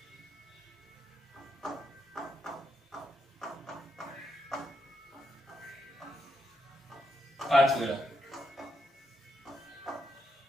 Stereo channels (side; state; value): both; normal; correlation 0.82